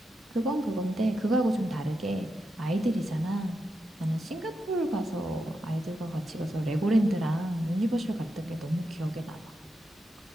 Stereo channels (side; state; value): both; normal; correlation 0.86